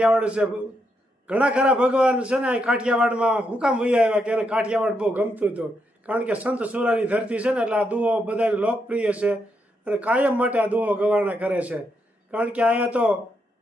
છે. ઘણા ખરા ભગવાન છે ને કાઠિયાવાડમાં હું કામ વૈયા આવ્યા કે એને કાઠિયાવાડ બહુ ગમતું હતું. કારણ કે સંત સુરાની ધરતી છે ને એટલે આ દુહો બધા લોકપ્રિય છે અને કાયમ માટે આ દુહો ગવાણા કરે છે. કારણ કે અહીંયા તો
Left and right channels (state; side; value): normal; both; correlation 0.80